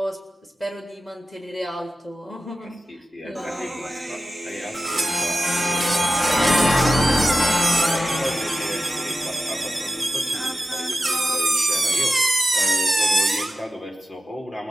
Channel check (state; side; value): normal; both; correlation 0.93